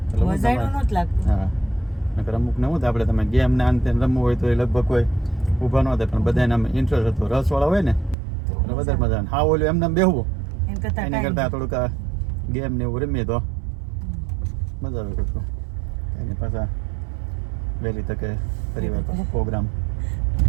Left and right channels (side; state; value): left; drops out; at 8.2 s